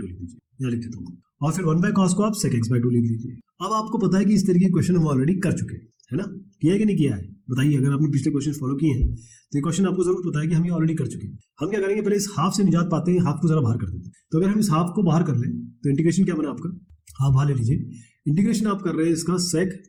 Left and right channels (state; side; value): identical; both; correlation 1.00